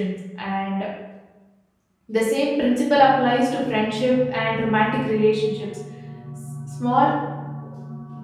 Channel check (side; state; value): both; identical; correlation 1.00